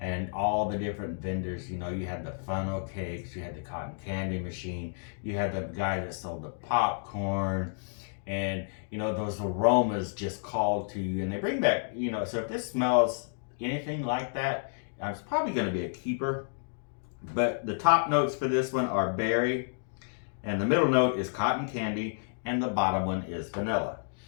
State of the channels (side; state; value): right; silent; digital silence